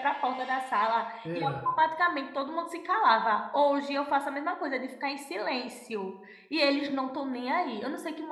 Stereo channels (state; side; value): identical; both; correlation 1.00